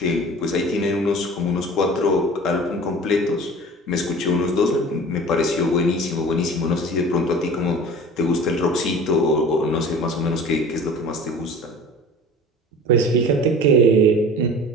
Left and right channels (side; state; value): both; normal; correlation 0.41